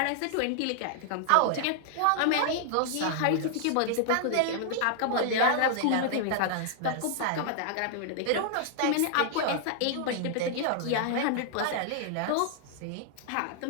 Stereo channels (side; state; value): both; different; correlation -0.01